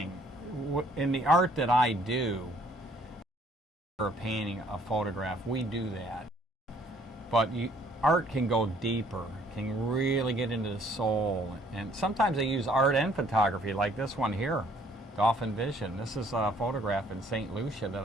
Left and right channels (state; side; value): normal; both; correlation 0.62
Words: In the art that I do, for a painting, a photograph, we do that. But art can go deeper, can really get into the soul. And sometimes I use art and photography, like this one here, Dolphin Vision. This is a photograph in St. Lucia that